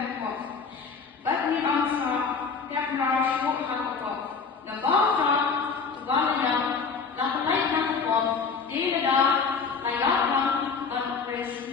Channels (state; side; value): quieter; right; 5.2 dB